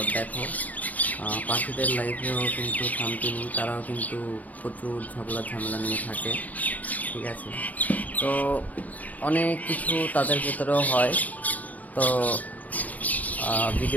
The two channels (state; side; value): late; right; 0.074 ms